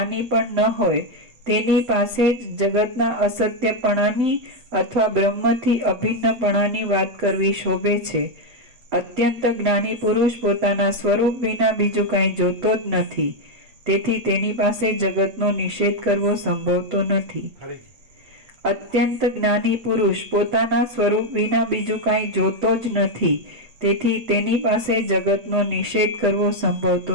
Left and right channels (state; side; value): late; left; 8.0 ms